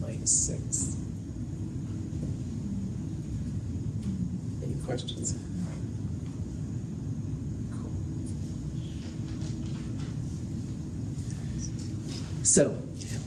minus 6. Any questions? Cool. So,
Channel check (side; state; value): both; identical; correlation 1.00